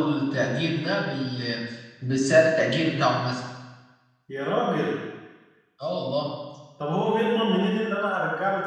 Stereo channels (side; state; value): both; identical; correlation 1.00